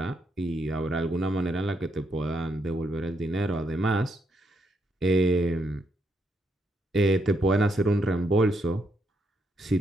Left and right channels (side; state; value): both; normal; correlation 0.78